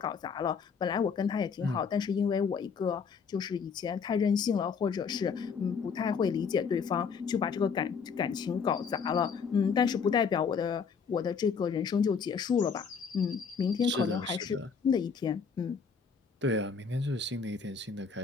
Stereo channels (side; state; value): right; quieter; 5.9 dB